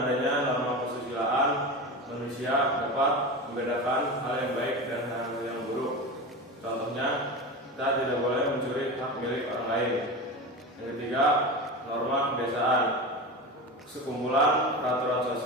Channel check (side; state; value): both; normal; correlation 0.25